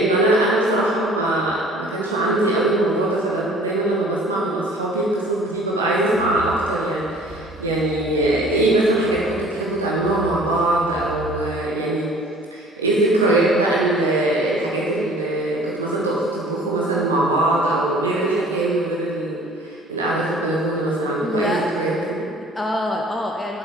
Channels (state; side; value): normal; both; correlation 0.50